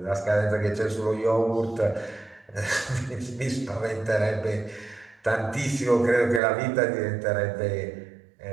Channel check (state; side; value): drops out; left; at 6.4 s